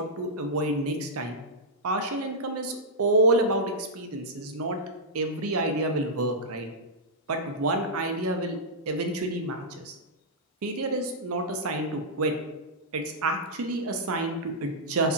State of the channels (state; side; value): normal; both; correlation -0.11